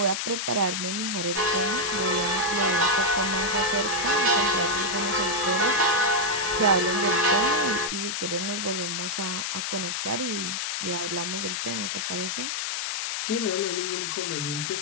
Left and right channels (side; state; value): left; noise; hiss, 2 dB below the sound